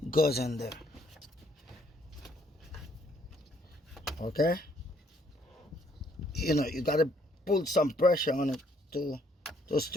goes in there. Okay. You know, you gotta put some pressure on it to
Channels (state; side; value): normal; both; correlation 0.67